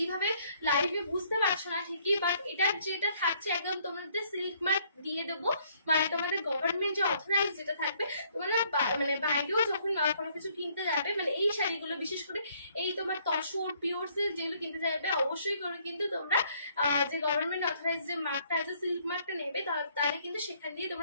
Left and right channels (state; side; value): inverted; both; correlation -0.65